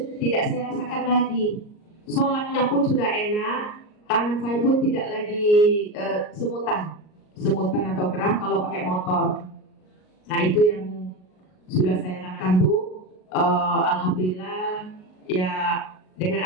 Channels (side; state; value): right; late; 38 ms